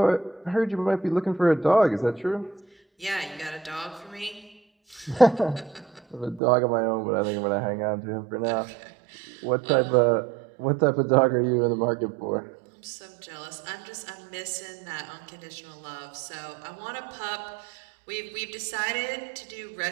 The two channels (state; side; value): drops out; left; at 6.4 s